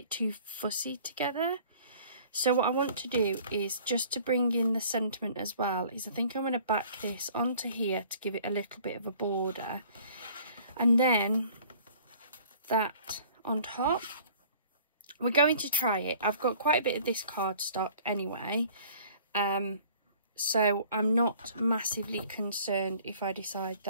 too fussy together. So what I want to do is, just to bring in the sentiment as well, is I think I'm going to back this onto here to give it a little bit of a border. And then that on top. We're going to try it. I've got quite a bit of this cardstock anyway. So I'm not massively concerned if I decide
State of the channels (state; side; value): inverted; both; correlation -0.52